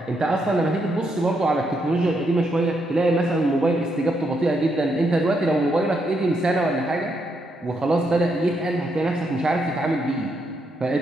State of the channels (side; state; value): both; normal; correlation 0.79